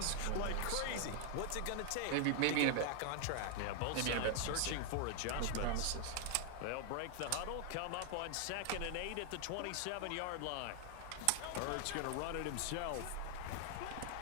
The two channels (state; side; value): different; both; correlation 0.00